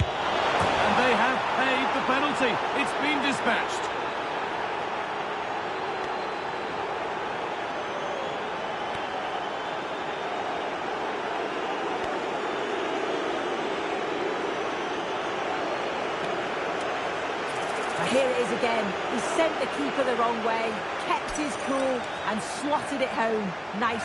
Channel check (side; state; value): both; identical; correlation 1.00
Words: they have paid the penalty. It's been dispatched. Now here it is again. He sent the keeper the wrong way, kept his cool and slotted it home.